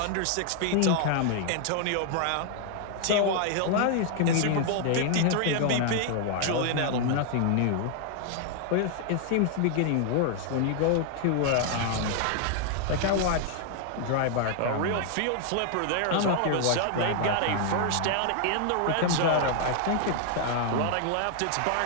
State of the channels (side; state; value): both; different; correlation 0.00